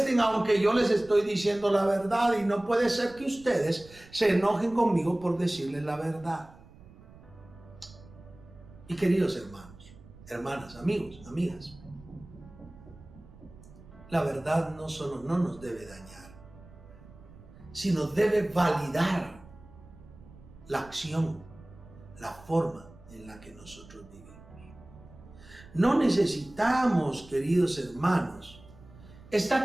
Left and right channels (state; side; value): noise; right; rumble, 21 dB below the sound